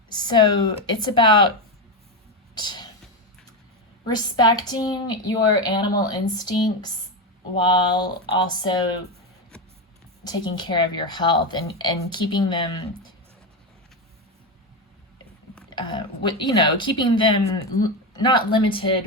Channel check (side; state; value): both; normal; correlation 0.12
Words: So it's about respecting your animal instincts while also taking care of your health and keeping them, keeping them not